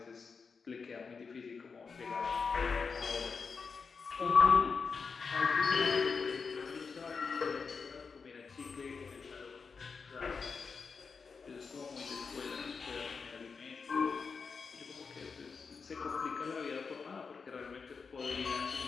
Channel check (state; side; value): quieter; right; 5.2 dB